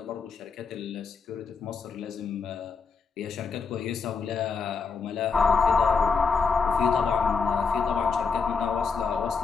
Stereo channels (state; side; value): quieter; right; 5.2 dB